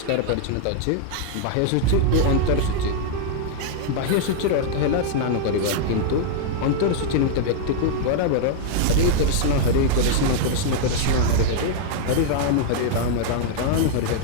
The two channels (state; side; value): different; both; correlation -0.01